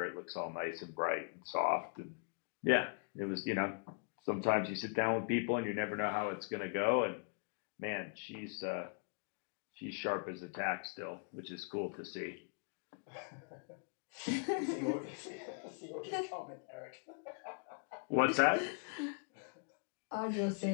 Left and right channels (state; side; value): quieter; right; 37.7 dB